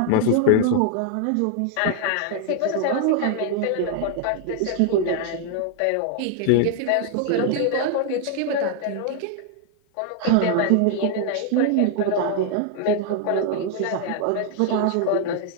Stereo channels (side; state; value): both; different; correlation 0.00